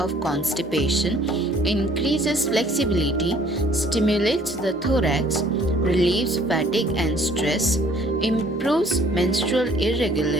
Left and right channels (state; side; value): normal; both; correlation 0.57